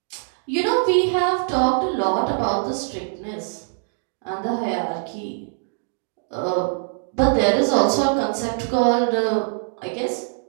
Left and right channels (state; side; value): silent; left; digital silence